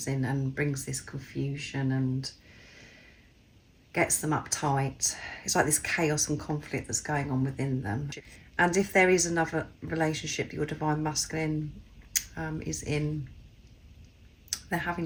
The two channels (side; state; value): both; identical; correlation 1.00